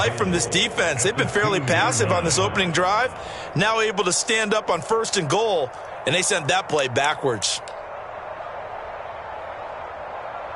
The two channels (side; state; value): both; identical; correlation 1.00